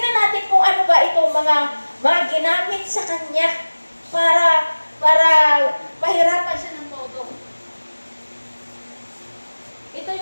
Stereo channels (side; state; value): both; inverted; correlation -1.00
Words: natin kung ano ba itong mga ginamit sa kanya para mahirapan siya ng todo. Ito